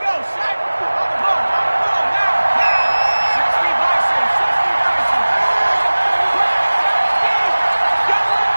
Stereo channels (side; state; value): both; inverted; correlation -1.00